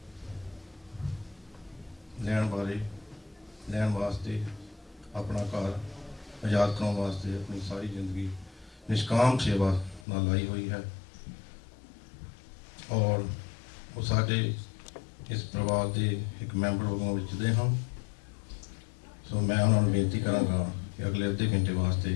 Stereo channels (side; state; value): right; drops out; at 10.1 s